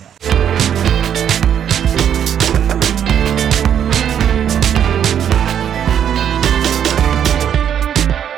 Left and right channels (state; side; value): quieter; left; 9.2 dB